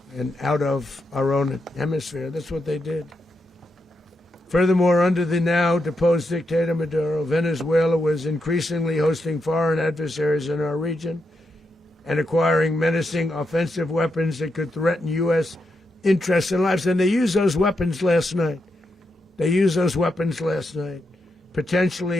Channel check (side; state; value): both; normal; correlation 0.84